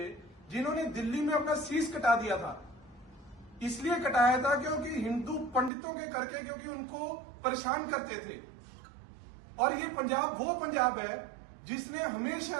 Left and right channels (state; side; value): drops out; left; at 5.7 s